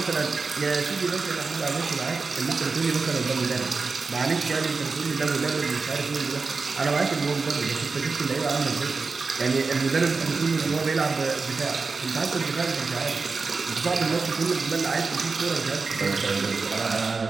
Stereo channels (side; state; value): left; quieter; 4.4 dB